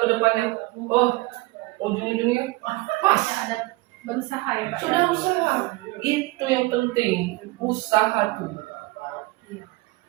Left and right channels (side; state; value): left; quieter; 21.8 dB